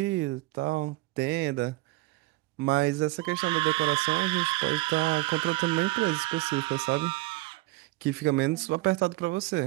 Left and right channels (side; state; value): left; quieter; 21.1 dB